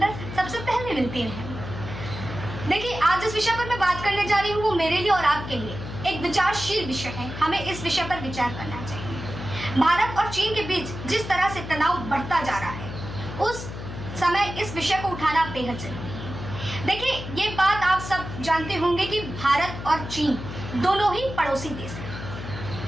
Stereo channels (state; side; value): noise; left; hum, 9 dB below the sound